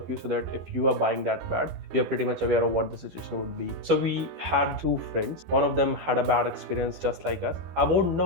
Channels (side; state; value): left; late; 12 ms